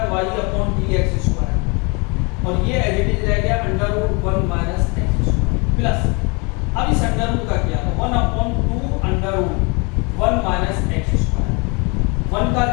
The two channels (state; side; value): quieter; right; 30.2 dB